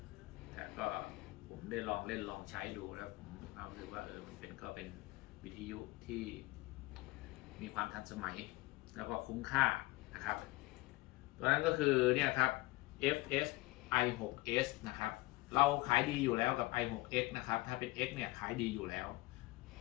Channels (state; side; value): quieter; right; 21.0 dB